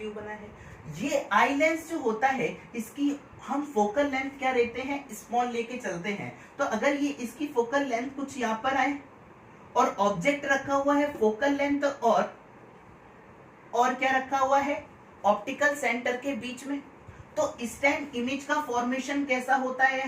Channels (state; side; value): identical; both; correlation 1.00